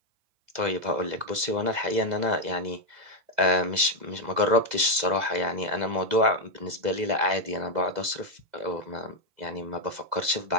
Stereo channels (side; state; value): left; late; 2.0 ms